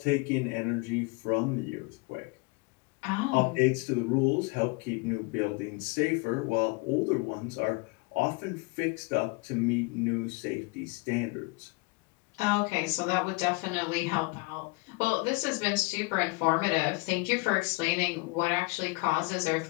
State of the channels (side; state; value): right; quieter; 26.6 dB